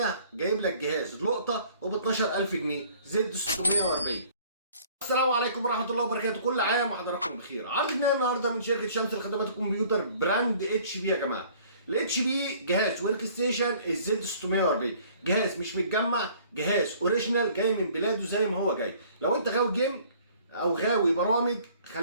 جايب لك جهاز لقطه وب 12000 جنيه زد 640. السلام عليكم ورحمه الله وبركاته، كل عام وحضراتكم بخير. عرضنا النهارده من شركه شمس لخدمات الكمبيوتر براند اتش بي يا جماعه. الاتش بي جهاز ورك ستيشن الزد 640، جهاز مش متجمع، جهاز اوريجينال جاي من بلاده زي ما هو جاي. لو انت غاوي جيم او غاوي برامج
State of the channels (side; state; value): both; inverted; correlation -0.54